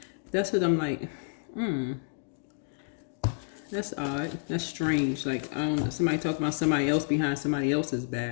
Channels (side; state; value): right; silent; digital silence